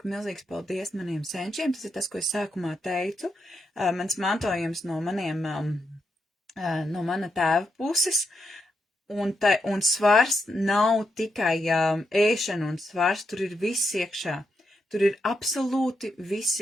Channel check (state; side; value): normal; both; correlation 0.82